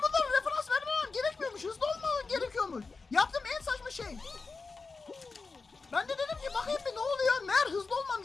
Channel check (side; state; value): right; quieter; 4.2 dB